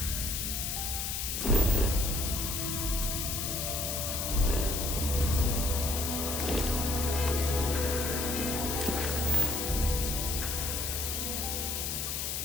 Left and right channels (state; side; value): noise; left; hiss, 2 dB below the sound